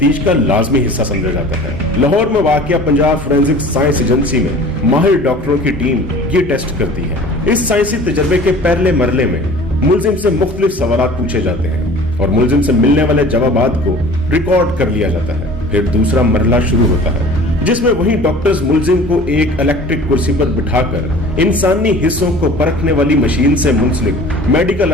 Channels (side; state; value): both; normal; correlation 0.44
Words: का लाजमी हिस्सा समझा जाता है। लाहौर में वाक़िया पंजाब फोरेंसिक साइंस एजेंसी में माहिर डॉक्टरों की टीम ये टेस्ट करती है। इस साइंसी तजर्बे के पहले मरले में मुल्जिम से मुख्तलिफ सवालात पूछे जाते हैं और मुल्जिम से मिलने वाले जवाबात को रिकॉर्ड कर लिया जाता है। फिर दूसरा मरला शुरू होता है, जिसमें वही डॉक्टर्स मुल्जिम को एक इलेक्ट्रिक कुर्सी पर बिठाकर इंसानी हिस्सों को परखने वाली मशीन से मुंसलिक मेडिकल